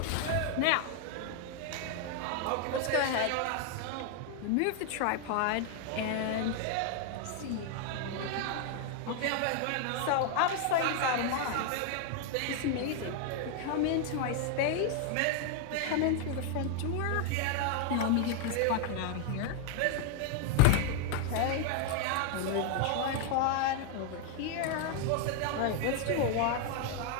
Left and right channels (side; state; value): both; different; correlation 0.00